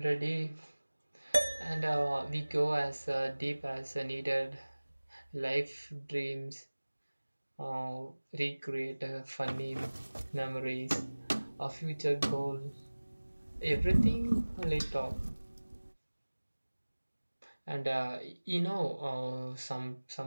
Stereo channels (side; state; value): both; inverted; correlation -1.00